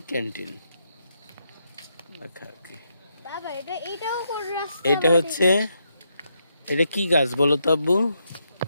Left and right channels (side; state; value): both; inverted; correlation -0.80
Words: ক্যান্টিন লেখা কি? বাবা এটাও কোন রাস্তা? এটা হচ্ছে, এটা কি গাছ বলো তো আব্বু?